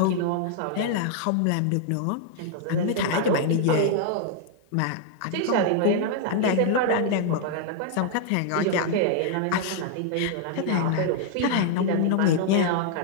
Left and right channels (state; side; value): different; both; correlation -0.01